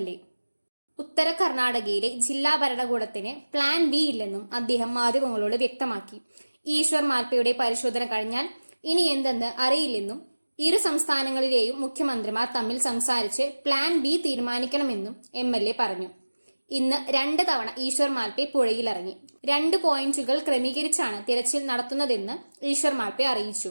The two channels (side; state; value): both; inverted; correlation -1.00